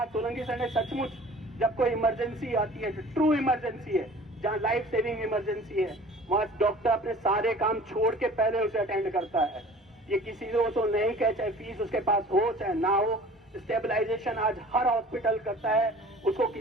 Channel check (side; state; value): both; normal; correlation 0.46